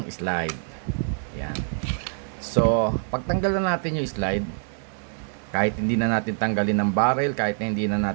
slide. Yan. So, pagtanggal na natin yung slide, kahit hindi na natin tanggalin ng barrel, kahit na hindi na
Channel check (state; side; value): silent; left; digital silence